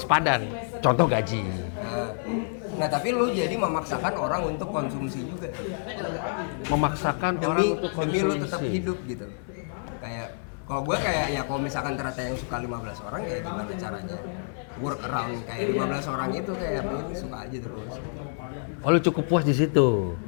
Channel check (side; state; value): right; silent; 60 dB below the other